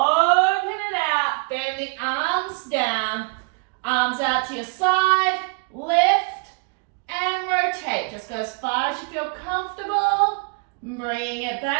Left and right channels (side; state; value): left; quieter; 35.5 dB